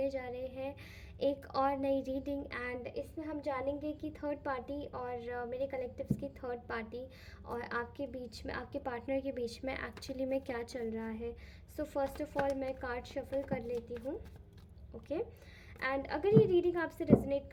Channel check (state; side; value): identical; both; correlation 1.00